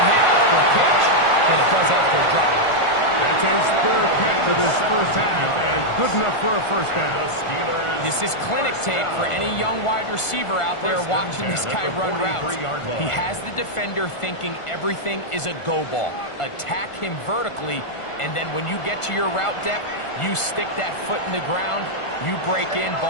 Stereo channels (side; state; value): right; late; 1.5 ms